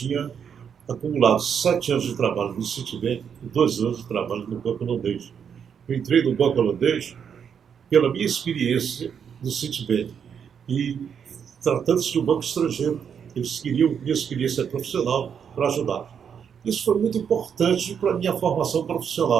acumulado 7 anos de trabalho no Citibank e 2 anos de trabalho no Banco Holandês. Eu entrei no Banco Holandês pela minha experiência no Citibank. E tratando-se de um banco estrangeiro, eles queriam minha experiência profissional para ajudar. Isso foi muito importante para a minha formação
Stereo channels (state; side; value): quieter; left; 7.5 dB